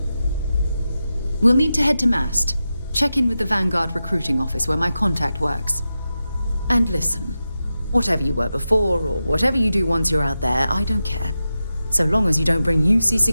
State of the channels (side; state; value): both; inverted; correlation -0.91